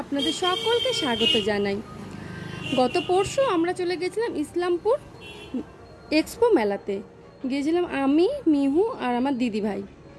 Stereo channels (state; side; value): identical; both; correlation 1.00